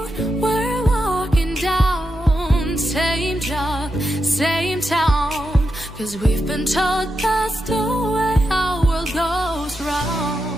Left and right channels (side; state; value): both; normal; correlation 0.87